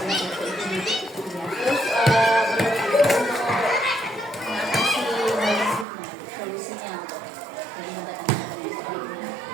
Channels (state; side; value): drops out; left; at 5.9 s